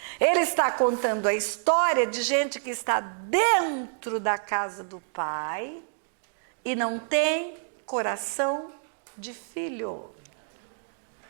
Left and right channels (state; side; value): silent; left; digital silence